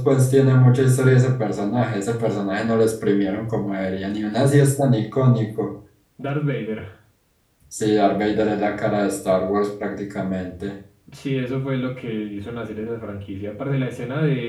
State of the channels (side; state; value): both; identical; correlation 1.00